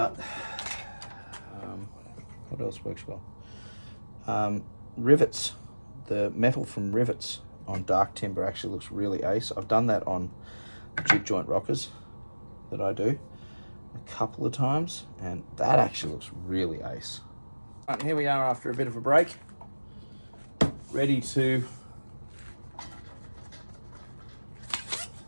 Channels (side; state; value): both; inverted; correlation -1.00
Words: what else works well? Rivets, the metal from rivets on dark timber actually looks really ace. I've done that on jig joint rockers that I do a couple of times, and that actually looks really ace. Right, here we are after a bit of a break, ready to